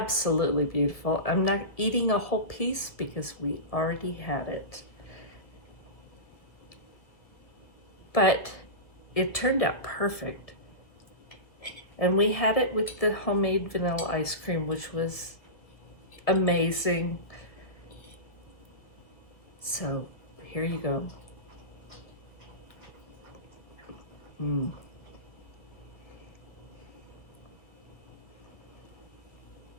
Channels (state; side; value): late; right; 1.7 ms